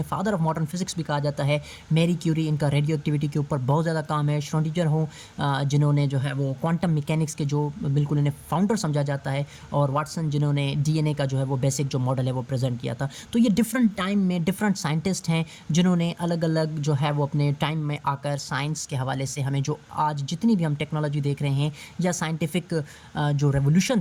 फादर ऑफ मॉडर्न फिज़िक्स भी कहा जाता है। मैरी क्यूरी, इनका रेडियो एक्टिविटी के ऊपर बहुत ज़्यादा काम है। श्रोडिंगर हो जिन्होंने जो है वो क्वांटम मैकेनिक्स के जो बिल्कुल इन्हें फाउंडर समझा जाता है। और वाटसन जिन्होंने डीएनए का जो है वो बेसिक जो मॉडल है वो प्रेजेंट किया था। तो ये डिफरेंट टाइम में डिफरेंट साइंटिस्ट हैं जिन्होंने अलग अलग जो है वो अपने टाइम में आकर साइंस के हवाले से हमें जो आज जितनी भी हम टेक्नोलॉजी देख रहे हैं या साइंटिफिक जो रेवोल्यूशन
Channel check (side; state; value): both; identical; correlation 1.00